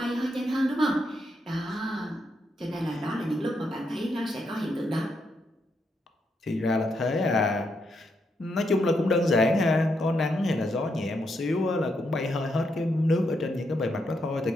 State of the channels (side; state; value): both; normal; correlation 0.80